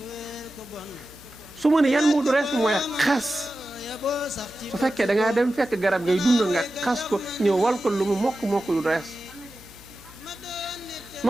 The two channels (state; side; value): noise; right; hum, 30 dB below the sound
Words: su ma ne yan moodu rees mooy xas su fekkee da ngaa dem fekk garab ngay dund nga xas ko ñëw wal ko lu mu mokk du rees